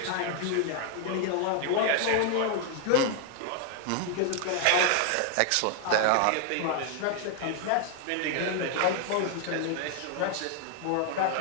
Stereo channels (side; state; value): both; different; correlation 0.00